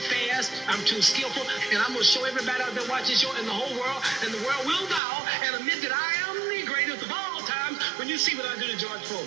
fast, I'm too skillful, and I'm going to show everybody out there watching this show and the whole world, and the world will bow and admit that I am the greatest of all times when you see what I do to George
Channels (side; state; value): left; drops out; at 5.0 s